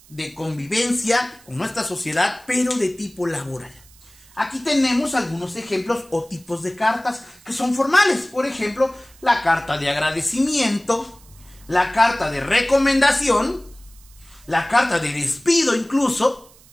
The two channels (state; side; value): noise; right; hiss, 26 dB below the sound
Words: de convivencia con nuestra sociedad, pero de tipo laboral. Aquí tenemos algunos ejemplos o tipos de cartas que son formales. Por ejemplo, la carta de agradecimiento, la carta de recomendación, la carta de despido incluso,